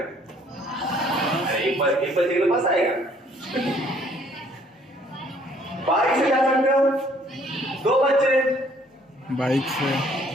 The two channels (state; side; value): normal; both; correlation 0.61